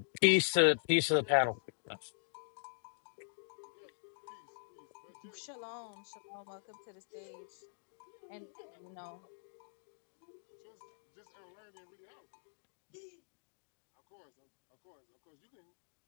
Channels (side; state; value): right; silent; digital silence